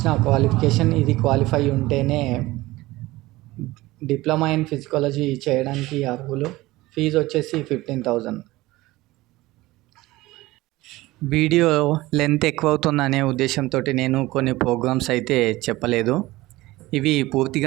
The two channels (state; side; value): quieter; left; 18.9 dB